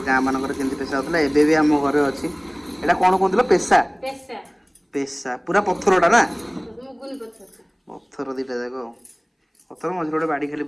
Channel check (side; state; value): both; identical; correlation 1.00